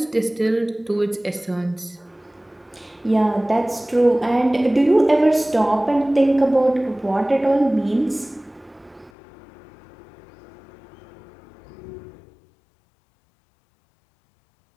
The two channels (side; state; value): right; drops out; at 9.1 s